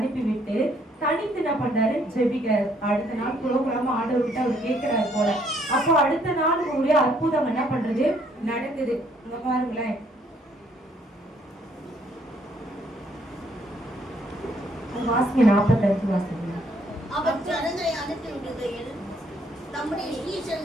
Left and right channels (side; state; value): both; normal; correlation 0.67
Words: தனித்து என்ன பண்றாரு, ஜெபிக்கிறாரு. அடுத்த நாள் புரோகிராம ஆர்டர் விட்டு அவர் கேட்கிறாரு போல. அப்போ அடுத்த நாள் உங்களுடைய அற்புதம் என்ன பண்றது நடக்குது. இங்க பாருங்களேன், வாசிங்க 45 வாசிங்க. அவர் ஜனங்களை அனுப்பி விடுகையில் தம்முடைய